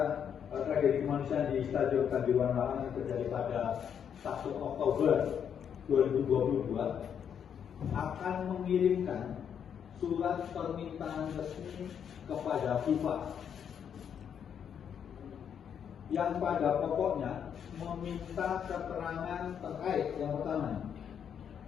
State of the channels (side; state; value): right; quieter; 8.1 dB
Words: tragedi kemanusiaan di Stadion Kanjuruhan Malang yang terjadi pada 1 Oktober 2022 akan mengirimkan surat permintaan resmi kepada FIFA yang pada pokoknya meminta keterangan terkait yang pertama,